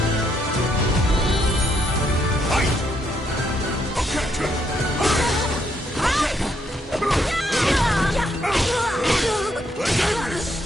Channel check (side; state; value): both; normal; correlation 0.74